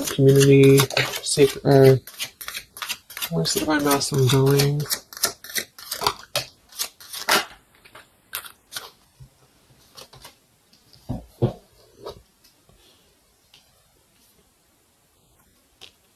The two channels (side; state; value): both; identical; correlation 1.00